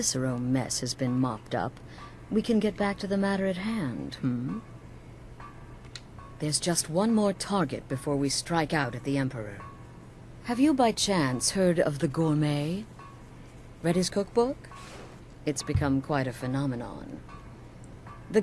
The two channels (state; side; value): identical; both; correlation 1.00